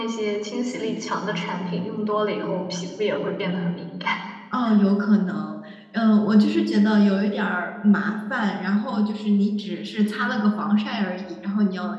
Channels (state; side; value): identical; both; correlation 1.00